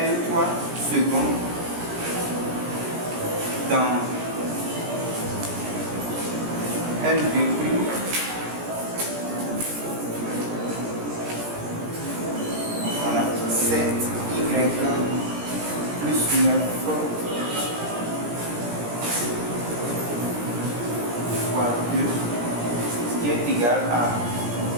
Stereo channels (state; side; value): late; left; 17 ms